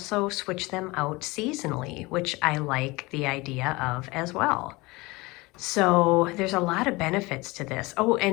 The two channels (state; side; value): quieter; right; 22.9 dB